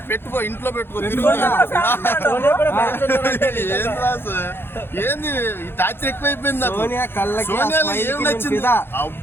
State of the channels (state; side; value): late; right; 0.11 ms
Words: పెట్టుకో, ఇంట్లో పెట్టుకో, ఏంది ఈ టార్చర్ ఎక్కువైపోయింది. సోనియాలో ఏం నచ్చింది?